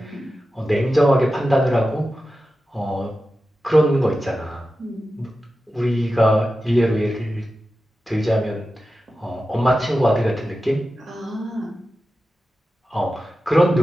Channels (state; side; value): normal; both; correlation 0.93